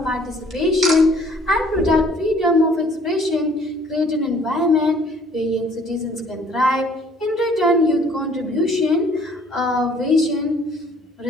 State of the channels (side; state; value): both; normal; correlation 0.58